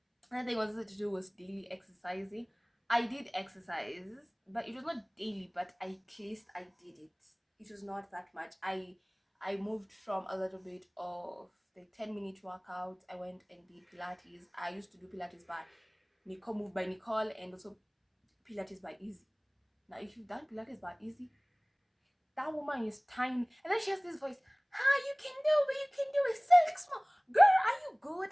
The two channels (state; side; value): identical; both; correlation 1.00